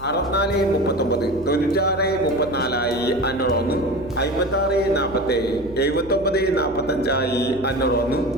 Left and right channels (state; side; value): noise; right; hum, 17 dB below the sound